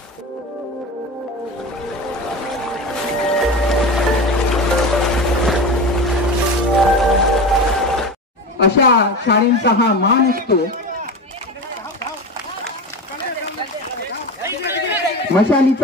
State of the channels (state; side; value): normal; both; correlation 0.27